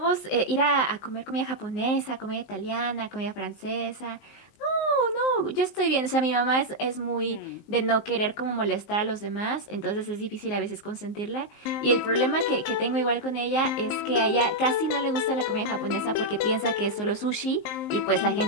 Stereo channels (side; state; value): right; late; 19 ms